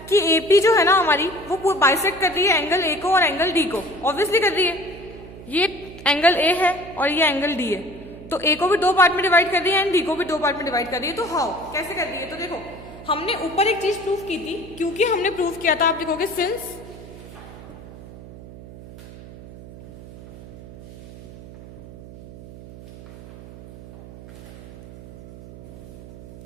कि एपी जो है ना हमारी, वो बाइसेक्ट कर रही है एंगल ए को और एंगल डी को। ऑब्वियसली कर रही है, ये एंगल ए है और ये एंगल डी है, तो ए को भी दो पार्ट में डिवाइड कर रही है एंड डी को भी दो पार्ट में डिवाइड कर रही है। तो हाउ, कैसे कर रही है, तो देखो हमने ऊपर एक चीज प्रूफ की थी, क्योंकि हमने प्रूफ किया था, आप लिखोगे सिंस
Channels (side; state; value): right; noise; hum, 17 dB below the sound